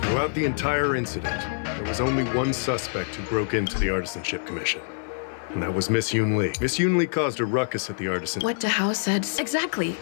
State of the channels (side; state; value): right; silent; 56 dB below the other